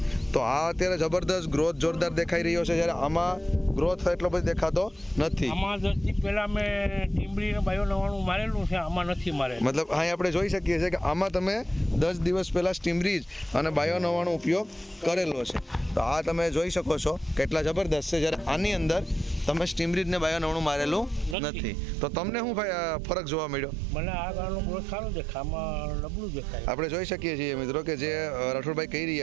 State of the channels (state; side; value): drops out; left; at 21.4 s